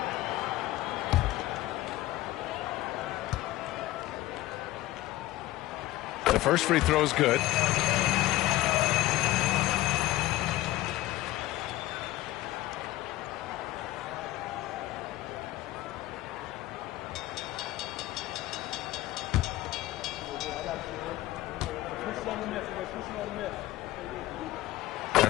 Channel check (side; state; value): right; quieter; 16.5 dB